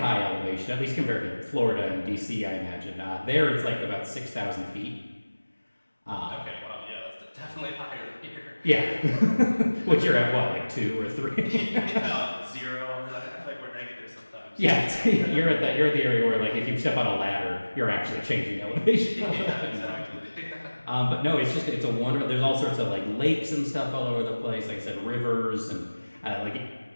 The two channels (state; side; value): inverted; both; correlation -1.00